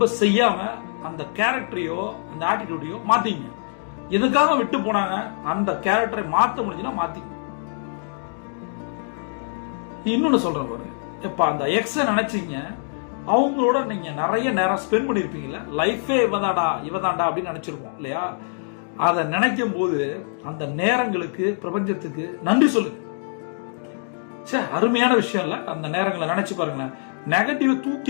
செய்யாம அந்த கேரக்டரையோ அந்த ஆட்டிடியூடையோ மாத்திங்க. எதுக்காக விட்டு போனாங்க அந்த கேரக்டரை மாத்த முடிஞ்சுன்னா மாத்திங்க. இன்னொன்னு சொல்றேன் பாருங்க, இப்ப அந்த எக்ஸ நினைச்சீங்க, அவங்களோட நீங்க நிறைய நேரம் ஸ்பெண்ட் பண்ணிருப்பீங்கல்ல, லைஃபே இவதாண்டா அப்படின்னு நினைச்சிருப்போம் இல்லையா? அதை நினைக்கும் போது அந்த நேரங்களுக்கு பிரபஞ்சத்துக்கு நன்றி சொல்லுங்க. சரி, அருமையான விஷயம் இல்ல? அந்த நேரங்களை நினைச்சு பாருங்க, நெகட்டிவ்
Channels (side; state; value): right; silent; digital silence